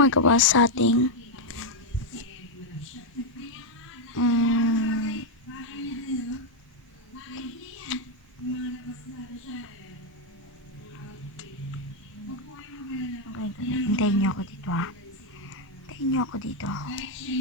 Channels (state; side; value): normal; both; correlation 0.01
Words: sa ating Mm, okay, hintayin niyo ako dito ha. Hintayin niyo ako dito.